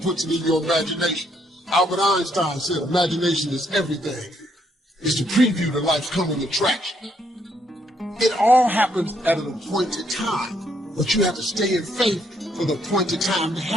it in your imagination. Albert Einstein said imagination is everything. It's the preview to life's coming attraction. It all happens at an appointed time, but you have to stay in faith for the appointed time to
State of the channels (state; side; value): normal; both; correlation 0.72